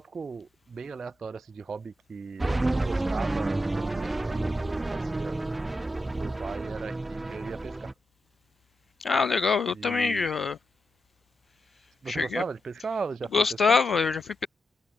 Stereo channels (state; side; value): normal; both; correlation 0.87